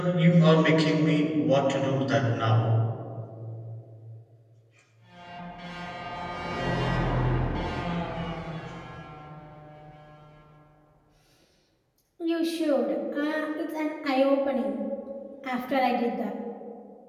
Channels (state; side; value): identical; both; correlation 1.00